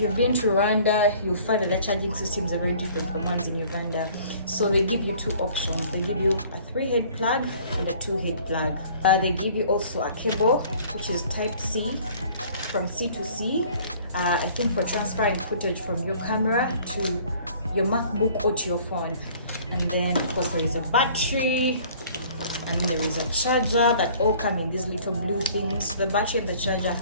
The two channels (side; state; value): both; inverted; correlation -0.52